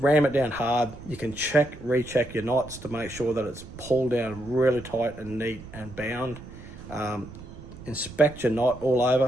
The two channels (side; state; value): right; noise; rumble, 15 dB below the sound